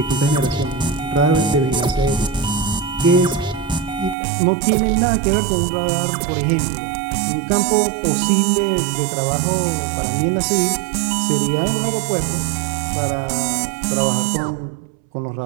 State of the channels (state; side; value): drops out; left; at 4.2 s